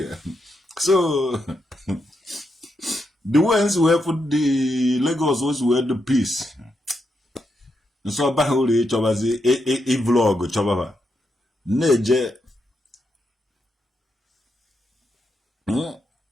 So the ones who have put the Lagos was were the peace. So bahuli chobazi a vlog chobaba. Neje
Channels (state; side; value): normal; both; correlation 0.83